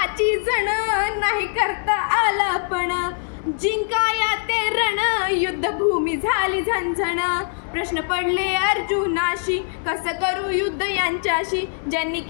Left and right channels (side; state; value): right; silent; digital silence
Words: जण, नाही करता आला पण, जिंकाया ते रण, युद्धभूमी झाली झणझण. प्रश्न पडले अर्जुनाशी, कसं करू युद्ध यांच्याशी, ज्यांनी